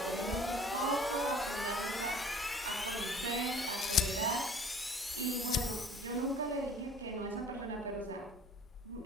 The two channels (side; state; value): both; normal; correlation 0.50